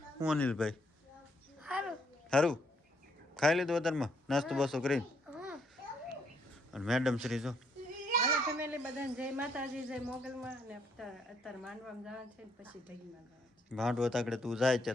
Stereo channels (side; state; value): both; normal; correlation 0.71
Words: હું અનિલભાઈ સારું ખાઈ લીધું અત્યારમાં નાસ્તો બાસ્તો કરીને? અને મેડમ શ્રી જો હાલો ફેમિલી બધાને જય માતાજી, જય મોગલમાં. અને અત્યારે માંડવામાં જવાનું છે, પછી ઢગીમાં જવાનું છે. માંડવો તાકડે તું જાય